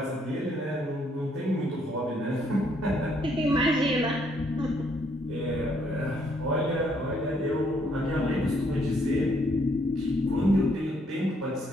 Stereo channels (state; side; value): normal; both; correlation 0.70